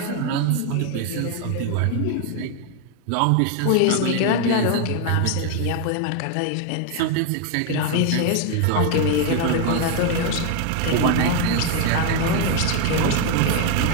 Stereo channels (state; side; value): different; both; correlation 0.01